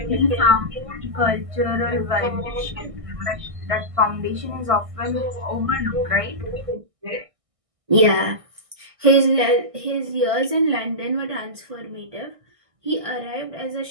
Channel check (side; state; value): left; late; 1.6 ms